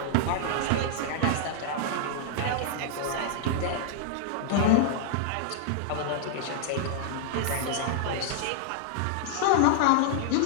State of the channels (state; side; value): different; both; correlation -0.01